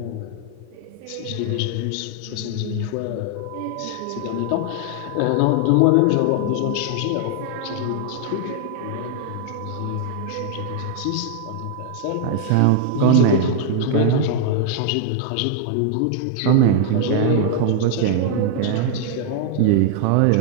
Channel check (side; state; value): both; different; correlation 0.00